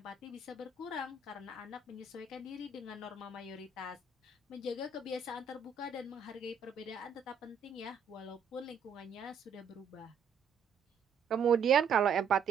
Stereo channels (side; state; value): left; quieter; 5.7 dB